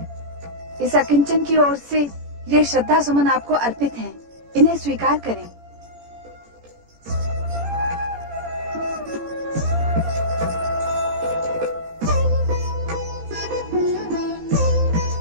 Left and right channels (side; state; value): left; late; 17 ms